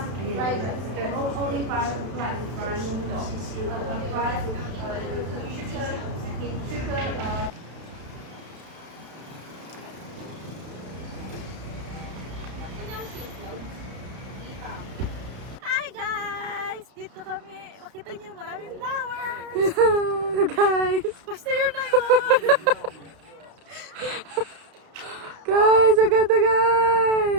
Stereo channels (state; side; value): late; left; 32 ms